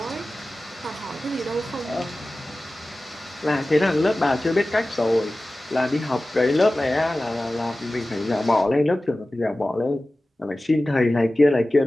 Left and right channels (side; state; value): both; normal; correlation 0.96